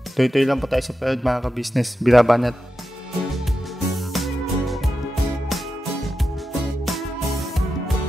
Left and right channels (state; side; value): normal; both; correlation 0.90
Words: Tuloy-tuloy lang po tayo sa panood mga ka-business. Birabanat!